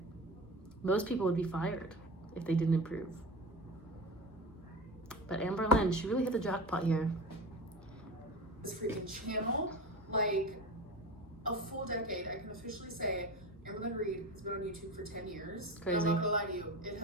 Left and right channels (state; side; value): normal; both; correlation 0.29